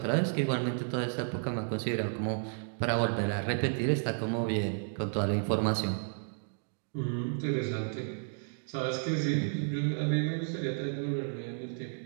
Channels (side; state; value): left; silent; digital silence